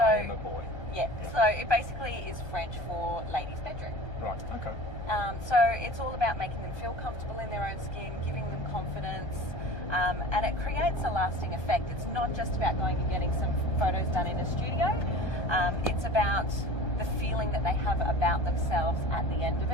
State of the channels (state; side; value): late; right; 1.2 ms